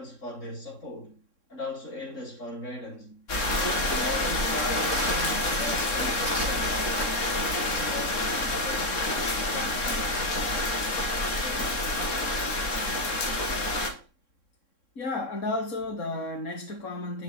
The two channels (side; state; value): right; late; 3.6 ms